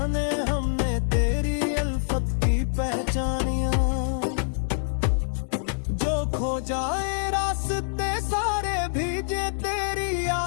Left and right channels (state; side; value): silent; right; digital silence